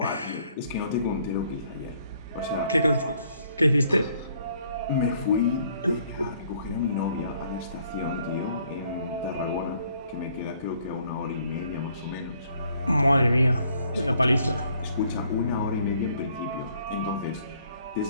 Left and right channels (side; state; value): both; inverted; correlation -0.64